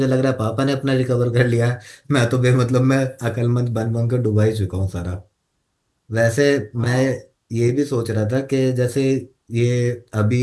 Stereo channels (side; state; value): both; identical; correlation 1.00